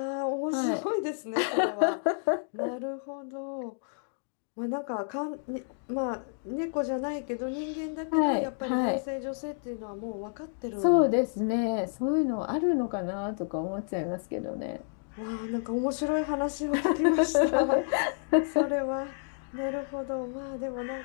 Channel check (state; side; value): silent; right; digital silence